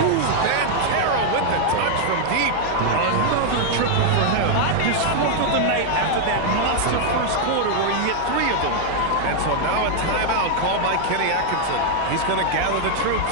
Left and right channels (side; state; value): both; different; correlation 0.00